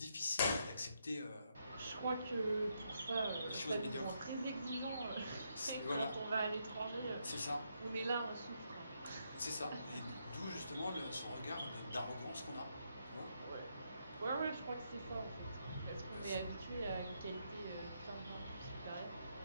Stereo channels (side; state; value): both; inverted; correlation -0.78